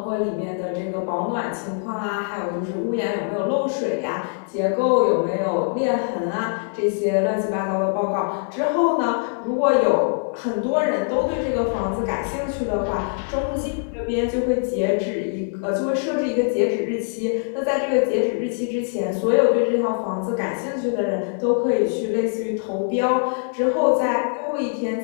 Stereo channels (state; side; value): silent; right; 63 dB below the other